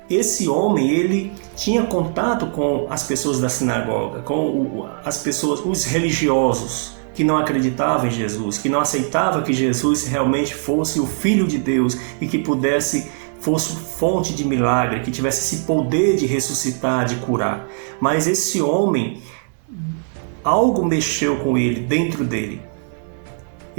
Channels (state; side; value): silent; left; 61 dB below the other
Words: esse homem, ele tinha contato com as pessoas da sinagoga, com as pessoas, os religiosos, que não acreditavam em Jesus, que não aceitavam que Jesus realmente fosse o Filho de Deus e que fosse fonte de milagre, que tivesse esse poder de ressuscitar, de curar. Mas esse homem, algo mexeu com ele, dentro dele.